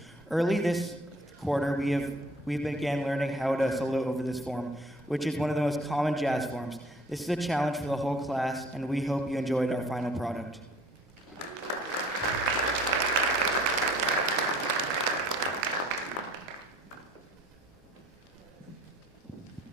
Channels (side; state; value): both; normal; correlation 0.54